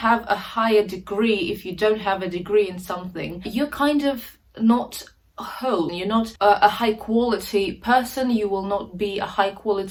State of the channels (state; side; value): identical; both; correlation 1.00